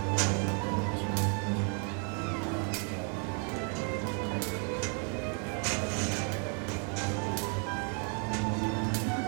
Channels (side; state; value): left; quieter; 39.5 dB